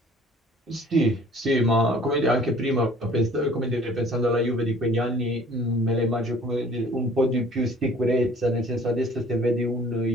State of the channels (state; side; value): normal; both; correlation 0.53